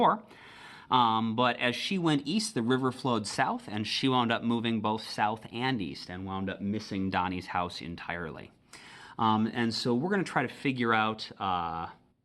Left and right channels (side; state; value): both; identical; correlation 1.00